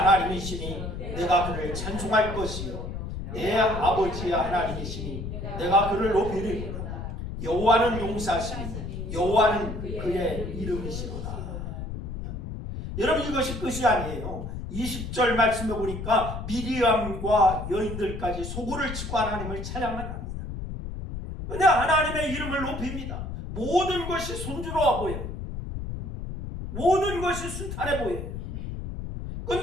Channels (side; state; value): left; noise; rumble, 6 dB below the sound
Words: 내가 그를 찬송할 것이요 내 아버지의 하나님이시니 내가 그를 높이리로다. 여호와는 용사시니 여호와는 그의 이름이시로다. 여러분, 이것이 끝이 아니에요. 20절 말씀에 보니까 미리암과 여인들까지 소고를 치고 하나님을 찬양을 합니다. 그런데 하나님의 이름을 높입니다. 모든 것이 순조로워 보여요. 모든 것이 순탄해 보여요.